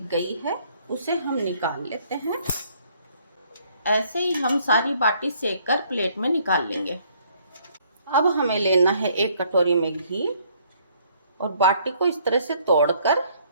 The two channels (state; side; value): inverted; both; correlation -0.64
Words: गई है उसे हम निकाल लेते हैं। ऐसे ही हम सारी बाटी सेक कर प्लेट में निकाल लेंगे। अब हमें लेना है एक कटोरी में घी और बाटी को इस तरह से तोड़कर